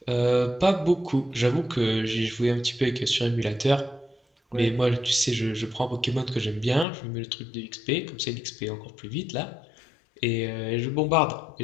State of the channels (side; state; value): right; drops out; at 6.9 s